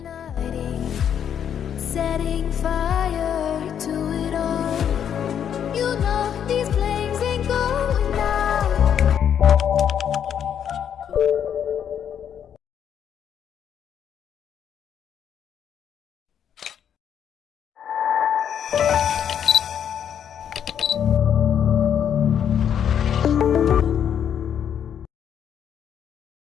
Setting fire to it all. You know these flames ain't going out.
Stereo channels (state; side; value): quieter; right; 8.8 dB